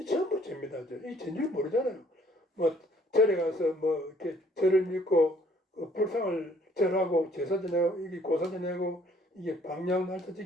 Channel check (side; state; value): both; normal; correlation 0.61